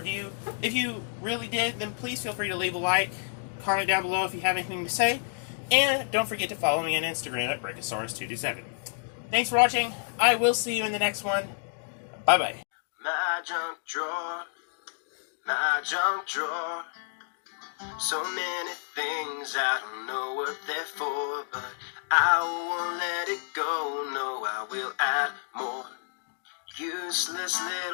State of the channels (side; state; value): right; silent; digital silence